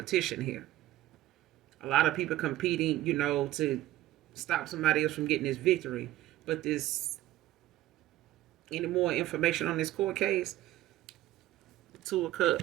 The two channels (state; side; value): quieter; left; 14.9 dB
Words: here. A lot of people competing, to stop somebody else from getting this victory. But this, any more information on this court case? Two of